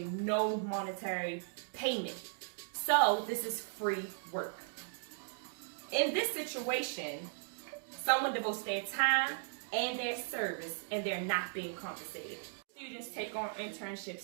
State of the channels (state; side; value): silent; left; digital silence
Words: no monetary payment. So this is free work. In this situation, someone devotes their time and their service, and they're not being compensated. Students take on